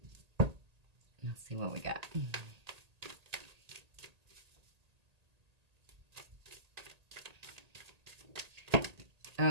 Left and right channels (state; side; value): late; left; 1.8 ms